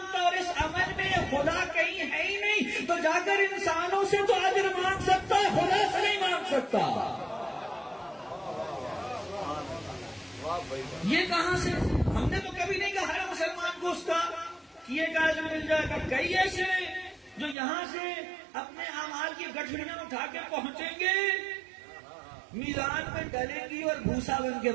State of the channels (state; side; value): drops out; left; at 17.6 s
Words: اور اس عمل میں خدا کہیں ہے ہی نہیں، تو جا کر انسانوں سے تو اجر مانگ سکتا ہے، خدا سے نہیں مانگ سکتا. یہ کہاں سے؟ ہم نے تو کبھی نہیں کہا ہر مسلمان کو اس کا کیے کا اجر مل جائے گا. کئی ایسے جو یہاں سے اپنے اعمال کی گٹھڑیاں اٹھا کے پہنچیں گے، میدان میں ڈلیں گی اور بھوسا بن کے